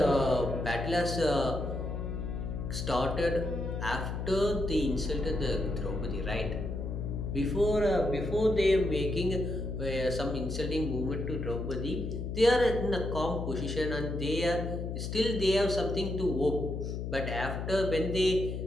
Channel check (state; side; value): noise; left; hum, 4 dB below the sound